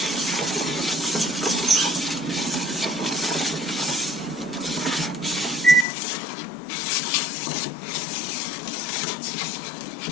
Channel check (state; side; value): drops out; right; at 5.9 s